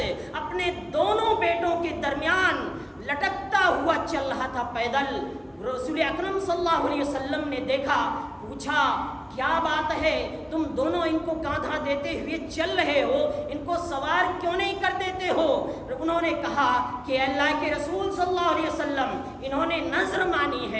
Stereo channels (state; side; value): identical; both; correlation 1.00